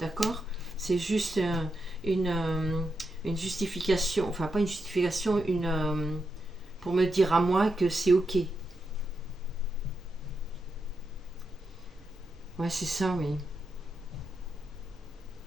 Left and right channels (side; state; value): both; normal; correlation 0.85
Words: C'est juste une justification, enfin pas une justification, pour me dire à moi que c'est ok. Ouais, c'est ça, oui.